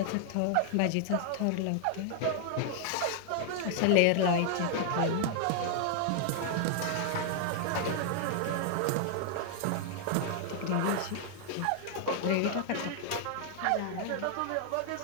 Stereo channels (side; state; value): both; different; correlation 0.00